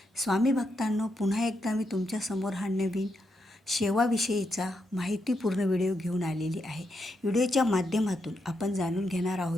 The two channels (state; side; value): normal; both; correlation 0.82